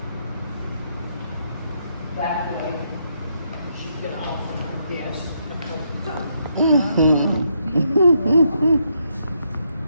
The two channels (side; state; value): both; inverted; correlation -0.77